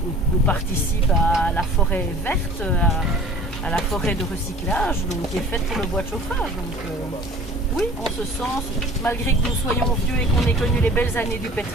On participe à la forêt verte, à la forêt de recyclage, donc, qui est faite pour le bois de chauffage. Donc, oui, en ce sens, malgré que nous soyons vieux et qu'on ait connu les belles années du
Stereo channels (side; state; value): both; normal; correlation 0.45